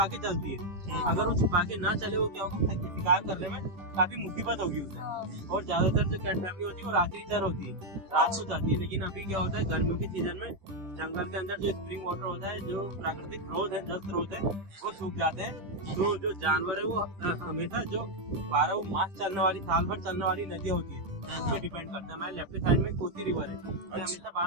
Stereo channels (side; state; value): left; late; 10 ms